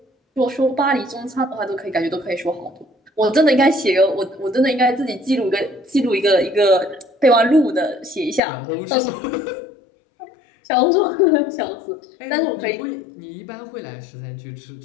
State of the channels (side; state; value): right; drops out; at 8.4 s